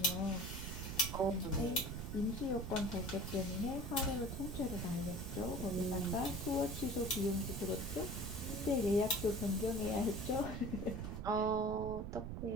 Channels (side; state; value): right; noise; rumble, 5 dB below the sound